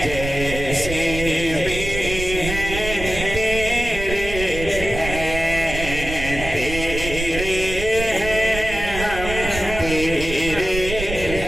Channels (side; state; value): right; noise; rumble, 7 dB below the sound